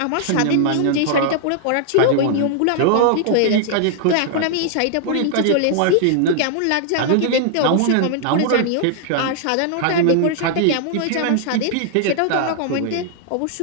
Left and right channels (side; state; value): both; different; correlation -0.01